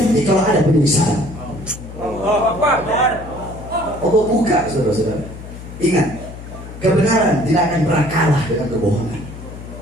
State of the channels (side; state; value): left; noise; hum, 13 dB below the sound